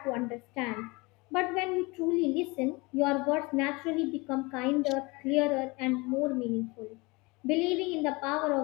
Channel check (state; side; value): quieter; right; 25.2 dB